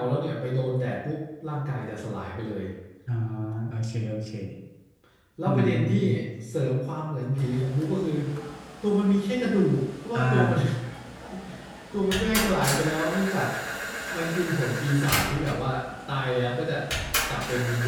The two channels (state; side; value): identical; both; correlation 1.00